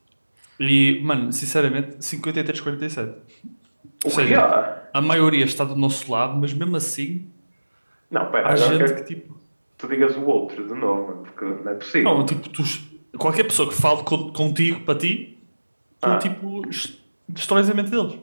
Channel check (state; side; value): inverted; both; correlation -1.00